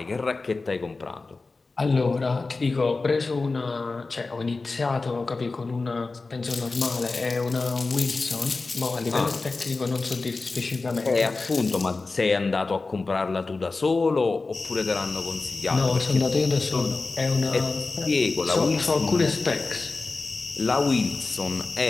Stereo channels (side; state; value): right; quieter; 3.8 dB